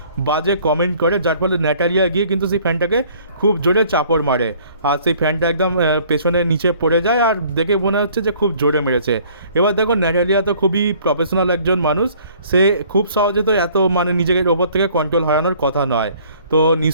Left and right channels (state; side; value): inverted; both; correlation -0.56